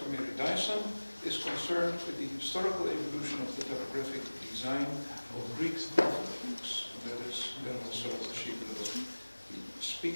Mary Dyson, is concerned with the historical evolution of the typographic design of Greek alphabets. That is also what she will be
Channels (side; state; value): both; inverted; correlation -1.00